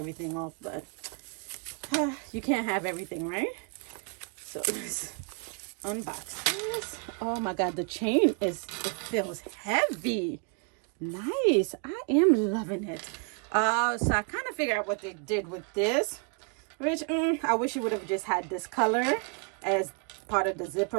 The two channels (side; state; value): left; quieter; 39.7 dB